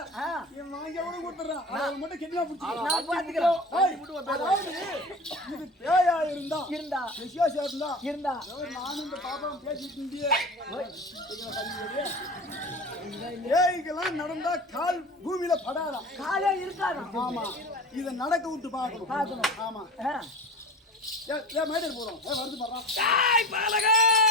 நீ வாங்கியா கூட கொடுத்துறேன். அவன் மட்டும் கிட்னா புடிச்சு நான் பாத்துக்கிறேன். இது பேயா இருந்தா விசேஷம் இருந்தா நானும் இந்த பாப்பாவும் பேசிட்டு இருந்தியே. ஏய்கெல்லாம் நடந்தா கால் பூமியில படாதா, காலே இருக்காது. ஆமா இத நடக்க விட்டு பார்க்கணும். ஆமா மேடர் போறோம் வருது பாரு.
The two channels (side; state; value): both; normal; correlation 0.34